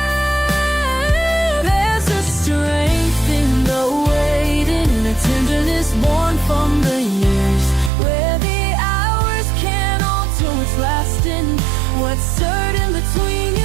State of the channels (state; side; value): drops out; left; at 7.9 s